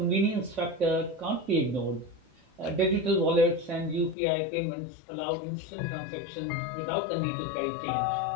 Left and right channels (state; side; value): drops out; right; at 4.2 s